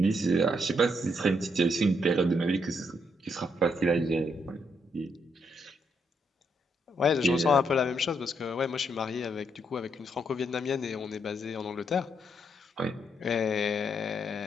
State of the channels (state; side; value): normal; both; correlation 0.76